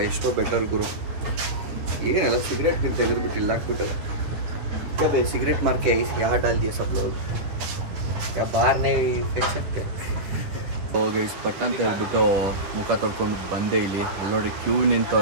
ಎಷ್ಟೋ ಬೆಟರ್ ಗುರು. ಏನೆಲ್ಲ ಸಿಗರೇಟ್ ಗಿಂತ ತೆಗೆದುಬಿಟ್ಟು ಇಲ್ಲ ಹಾಕ್ಬಿಟ್ಟಲ್ಲ. क्या भाई सिगरेट मार के यहाँ डाल दिया सब लोग, क्या बाहर नहीं फेंक सकते. ಗೈಸ್ ಪಟ್ಟ ಅಂತ ಹೇಳ್ಬಿಟ್ಟು ಮುಖ ತೊಳ್ಕೊಂಡು ಬಂದೆ. ಇಲ್ಲಿ ಅಲ್ಲಿ ನೋಡಿ ಕ್ಯೂ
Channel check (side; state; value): left; late; 9.8 ms